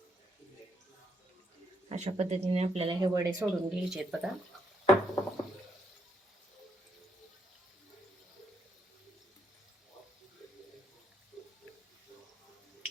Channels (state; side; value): normal; both; correlation 0.76